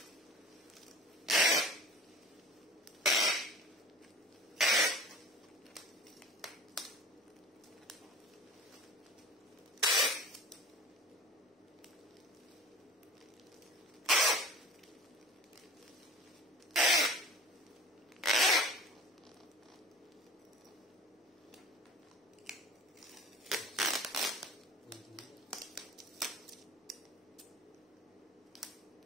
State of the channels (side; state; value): both; normal; correlation 0.42